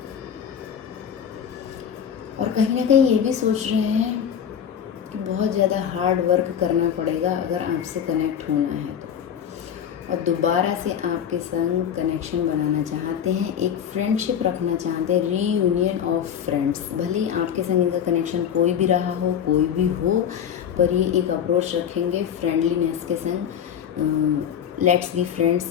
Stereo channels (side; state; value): right; quieter; 8.6 dB